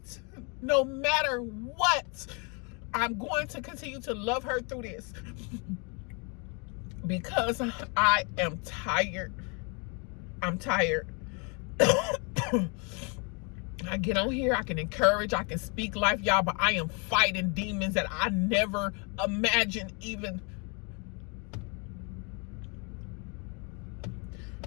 No matter what. I'm going to continue to love her through this. Because I am tired. I'm tired. I get on here, I can encourage, I can speak life, y'all, but I am fighting demons that I never imagined even.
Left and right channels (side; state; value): right; quieter; 33.6 dB